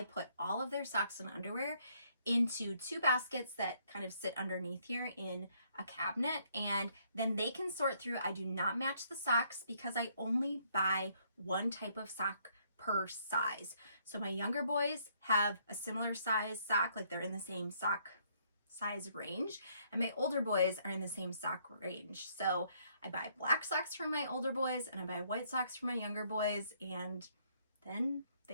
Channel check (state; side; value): inverted; both; correlation -0.68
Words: put all of their socks and underwear into two baskets that kind of sit underneath here in a cabinet, and then they can sort through. I do not match the socks because I only buy one type of sock per size. So my younger boys have a similar size sock, like they're in the same sock size range, and my older boys are in the same sock range. So I buy black socks for my older boys and I buy white socks for my younger boys, and then